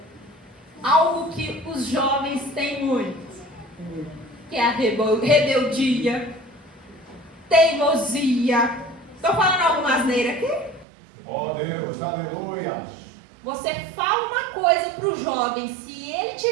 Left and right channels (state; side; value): drops out; left; at 10.9 s